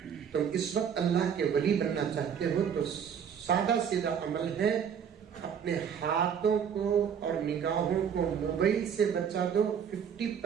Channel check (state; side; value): quieter; left; 7.7 dB